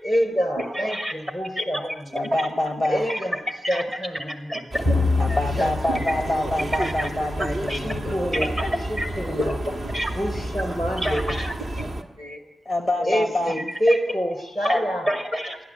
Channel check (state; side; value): normal; both; correlation 0.91